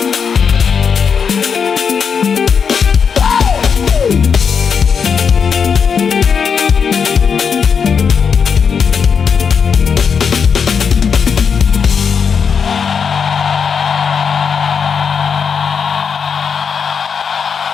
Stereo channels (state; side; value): quieter; right; 6.4 dB